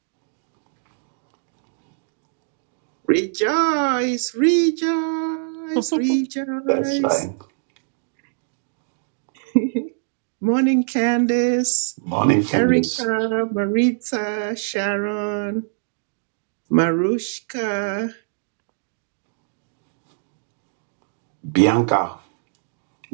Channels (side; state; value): left; silent; digital silence